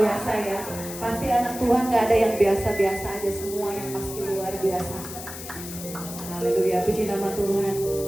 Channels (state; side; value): noise; left; hiss, 11 dB below the sound